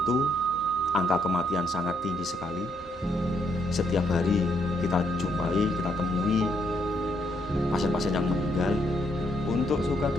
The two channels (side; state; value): both; normal; correlation 0.74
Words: angka kematian sangat tinggi sekali. Setiap hari kita jumpai, kita temui pasien-pasien yang meninggal. Untuk suka